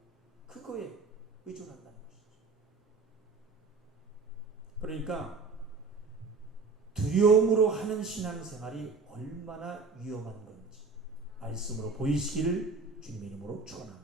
그거에 의존한다는 것이죠. 그러니까 두려움으로 하는 신앙생활이 얼마나 위험한 건지 말씀으로 보이시기를 주님의 이름으로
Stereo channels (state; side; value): quieter; left; 4.3 dB